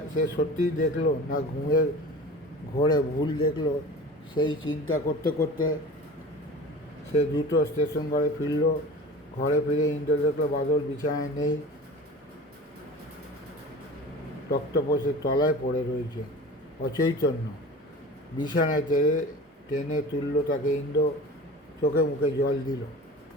সে সত্যিই দেখলো না ঘুমের ঘোরে ভুল দেখলো? সেই চিন্তা করতে করতে সে দ্রুত স্টেশন ঘরে ফিরল। ঘরে ফিরে ইন্দ্র দেখলো বাদল বিছানায় নেই, তক্তপোষের তলায় পড়ে রয়েছে অচৈতন্য। বিছানায় টেনে তুলল তাকে। ইন্দ্র চোখে মুখে জল দিল।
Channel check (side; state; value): both; normal; correlation 0.37